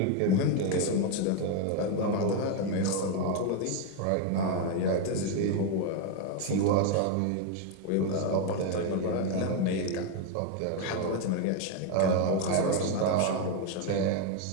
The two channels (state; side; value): different; both; correlation 0.01